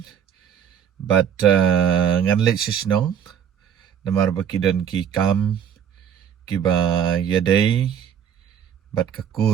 But ngan let shishnong namar bakidon ki kam ki ba yadai bat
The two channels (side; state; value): left; quieter; 8.7 dB